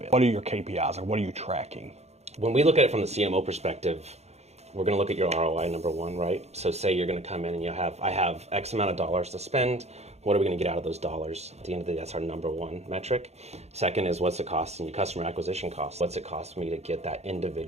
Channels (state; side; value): late; left; 0.31 ms